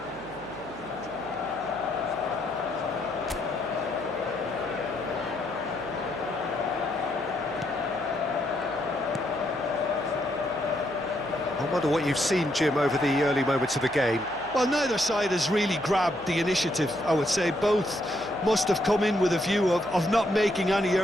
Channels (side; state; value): right; noise; hum, 22 dB below the sound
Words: I wonder what you've seen, Jim, over the early moments of the game. Well, neither side has really grabbed the initiative, I would say. Both must have come in with a view of not making any